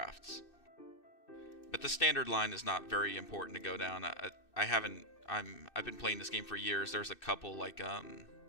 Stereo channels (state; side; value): late; right; 2.6 ms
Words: But the standard line is not very important to go down. I've been playing this game for years. There's a couple like I